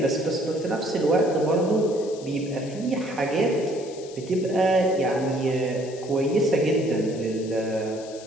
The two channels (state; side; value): noise; left; hiss, 19 dB below the sound